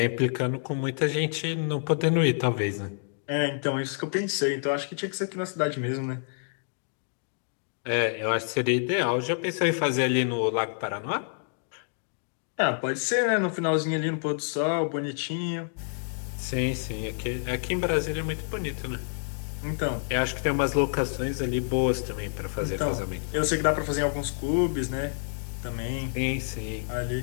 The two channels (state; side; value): silent; right; digital silence